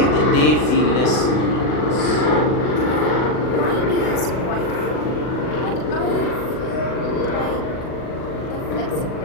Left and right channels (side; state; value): right; late; 40 ms